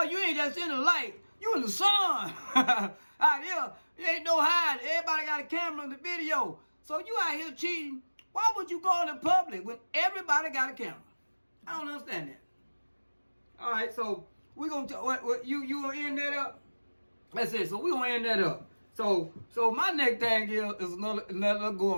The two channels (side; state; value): both; inverted; correlation -1.00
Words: you ain't just in the light. You in the sun. Out here, you ain't no hiding. Everybody got a camera in the video. So you out here cheating. Why would you go in the public when everybody got a camera? I don't understand that. All right, so we're gonna you gonna end that up. That's it. So we're gonna end that up. So my next thing here is another